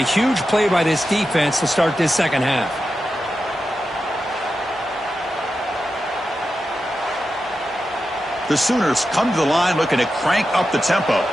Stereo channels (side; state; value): both; normal; correlation 0.90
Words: huge play by this defense to start this second half. The Sooners come to the line looking to crank up the tempo.